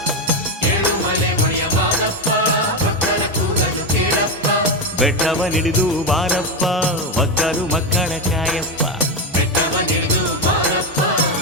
ಏಳುಮಲೆ ಒಡೆಯ ಮಾದಪ್ಪ ಭಕ್ತರ ಕೂಗನು ಕೇಳಪ್ಪ. ಬೆಟ್ಟವ ನಿಡಿದು ಬಾರಪ್ಪ ಒಕ್ಕಲು ಮಕ್ಕಳ ಕಾಯಪ್ಪ. ಬೆಟ್ಟವ ನಿಡಿದು ಬಾರಪ್ಪ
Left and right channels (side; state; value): both; normal; correlation 0.11